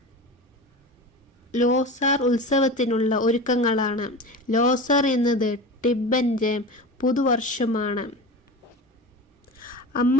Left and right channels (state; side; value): normal; both; correlation 0.30